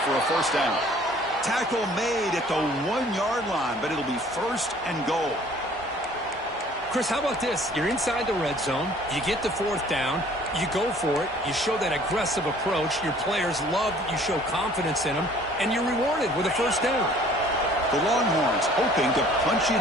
for a first down. Tackle made at the 1-yard line, but it'll be first and goal. Chris, how about this? You're inside the red zone. You get the 4th down. You go for it. You show that aggressive approach. Your players love that you show confidence in them, and you're rewarded with a first down. The Longhorns hoping to punch it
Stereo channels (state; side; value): normal; both; correlation 0.54